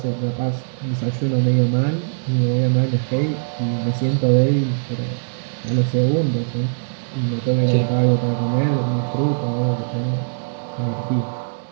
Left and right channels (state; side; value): silent; left; digital silence